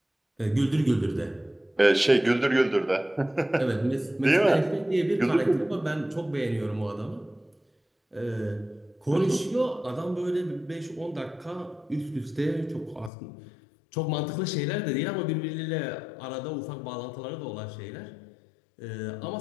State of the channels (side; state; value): right; drops out; at 13.1 s